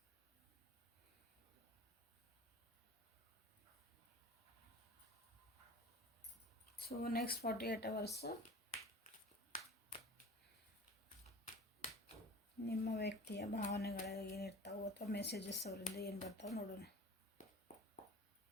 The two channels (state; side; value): normal; both; correlation 0.39